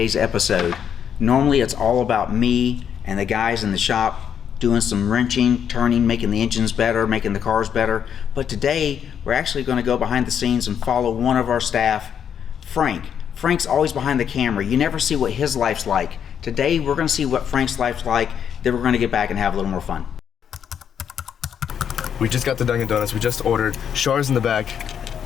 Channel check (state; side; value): quieter; right; 8.3 dB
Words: episode. Normally it's all about me and the guys in the shop doing some wrenching, turning, making the engines better, making the cars better. But today we're actually going to go behind the scenes and follow one of our staff, Frank. Frank's always behind the camera. You never see what his life's like. Today we're going to see what Frank's life's like, then we're going to get back and have a little more fun. We just got the Dunkin' Donuts. We just ordered Chars in the back,